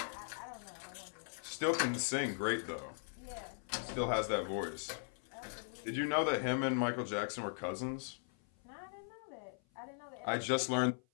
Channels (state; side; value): silent; right; 52 dB below the other